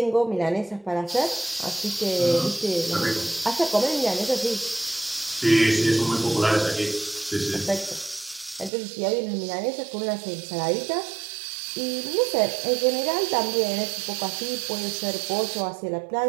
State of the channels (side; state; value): left; drops out; at 8.7 s